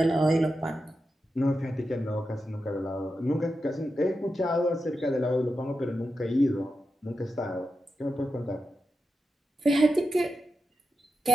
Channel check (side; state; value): both; normal; correlation 0.89